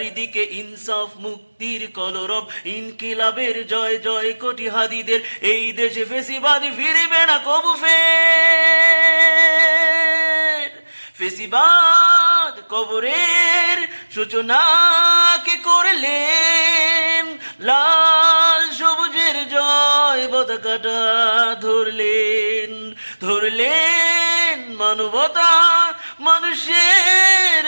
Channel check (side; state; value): both; inverted; correlation -1.00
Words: ইনসাফ মুক্তির কলরব, ইনকিলাবের জয় জয় কোটি হাদিদের, এই দেশে ফেসিবাদ ফিরবে না কবু ফের। ফেসিবাদ কবরের সূচনা কে করলেন, লাল সবুজের জয় পতাকাটা ধরলেন মানবতা মানুষের